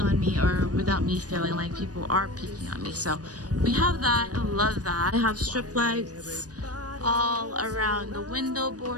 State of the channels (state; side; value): late; left; 0.68 ms